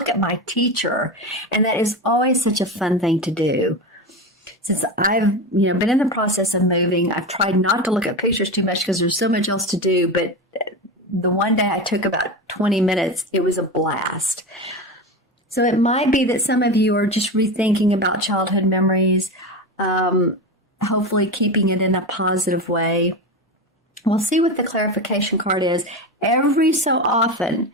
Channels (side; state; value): both; normal; correlation 0.21